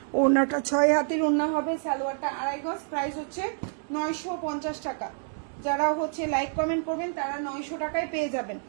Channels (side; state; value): left; silent; digital silence